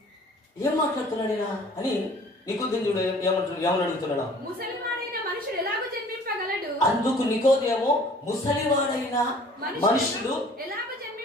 ఏం మాట్లాడుతున్నాడేనా అని నికోదేము చూడు ఏమని అడుగుతున్నాడు. అందుకు నికోదేము ముసలివాడైన మనుషుడు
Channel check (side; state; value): both; normal; correlation 0.51